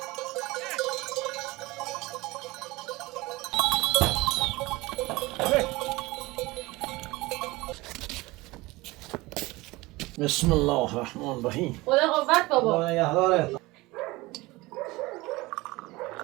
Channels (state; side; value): quieter; left; 21.4 dB